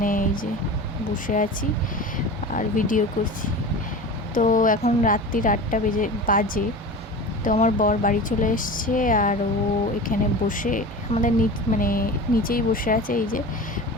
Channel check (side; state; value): both; normal; correlation 0.33